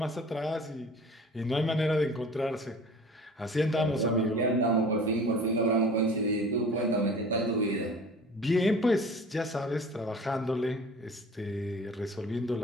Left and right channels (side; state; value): both; normal; correlation 0.44